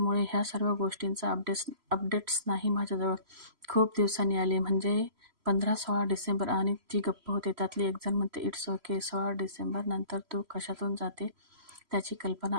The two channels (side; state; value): left; late; 3.0 ms